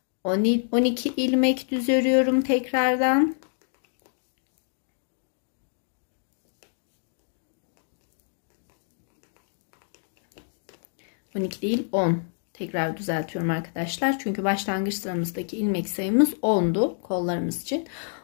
12 ilmek düz örüyorum tekrardan. ...12 değil 10. Tekrar düzeltiyorum arkadaşlar. Çünkü başlangıç sıramızdaki ilmek sayımız 10'du kollarımız için.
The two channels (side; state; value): right; silent; digital silence